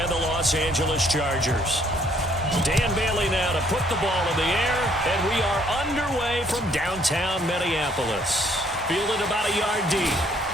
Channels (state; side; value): normal; both; correlation 0.64